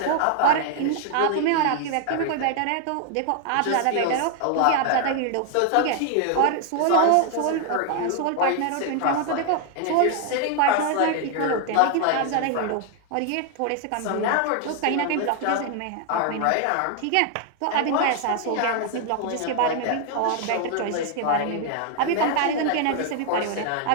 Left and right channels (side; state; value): both; different; correlation 0.00